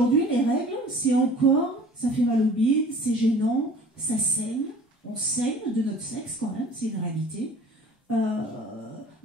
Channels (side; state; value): both; normal; correlation 0.47